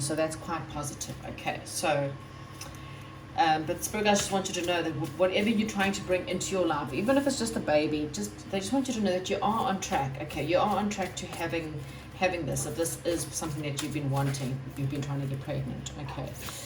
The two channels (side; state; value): both; identical; correlation 1.00